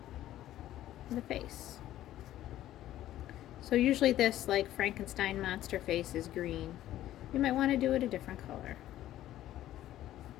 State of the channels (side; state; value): right; quieter; 13.4 dB